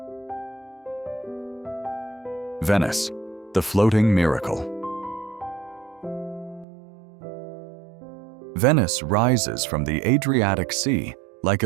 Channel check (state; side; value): drops out; left; at 6.7 s